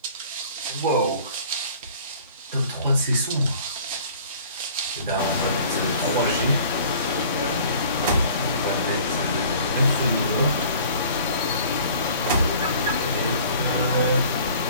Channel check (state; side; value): inverted; both; correlation -0.49